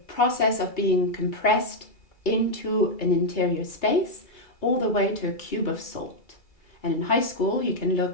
process of being compressed into an interior space all the way to a cube of salt. And in high school, you can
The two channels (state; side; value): late; right; 2.3 ms